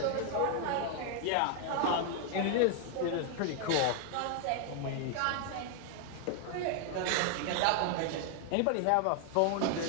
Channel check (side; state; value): both; different; correlation 0.00